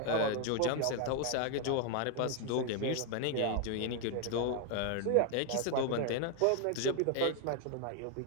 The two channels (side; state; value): both; different; correlation 0.00